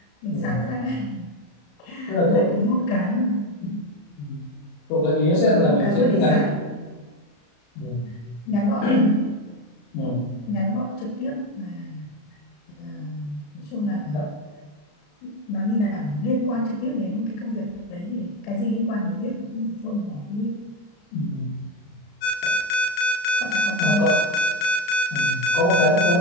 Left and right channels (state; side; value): late; right; 34 ms